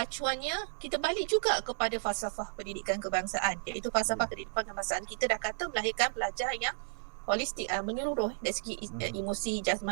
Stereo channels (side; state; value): left; silent; 56 dB below the other